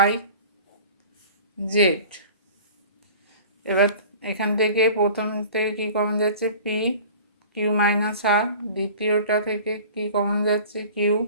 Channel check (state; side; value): inverted; both; correlation -0.43